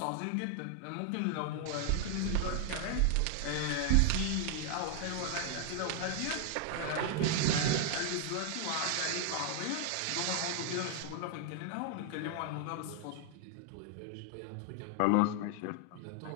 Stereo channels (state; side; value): different; both; correlation 0.00